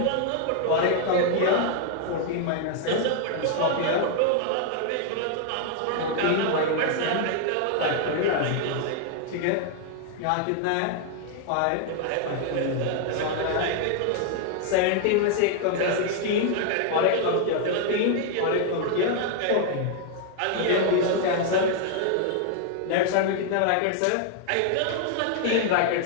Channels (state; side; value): different; both; correlation 0.00